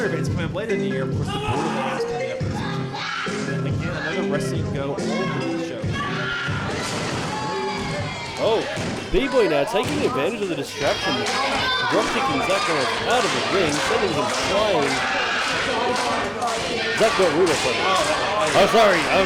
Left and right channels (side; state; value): both; identical; correlation 1.00